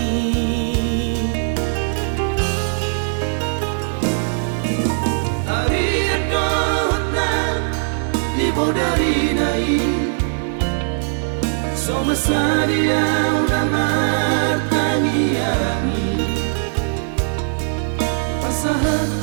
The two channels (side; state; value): left; silent; digital silence